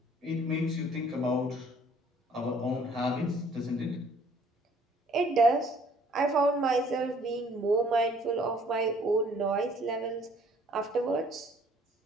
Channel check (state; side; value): normal; both; correlation 0.58